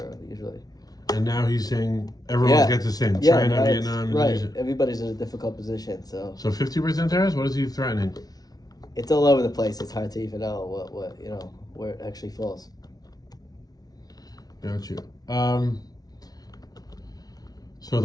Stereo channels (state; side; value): late; right; 0.19 ms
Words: usually. And now he's saying everyone Yeah. gets the same. Yeah, China, right, Vietnam, right. Indonesia. Everybody's in a difficult position, so So 50% tariffs? What is he threatening? it's all over the place. It's hard to even know what where it actually falls. Got you. So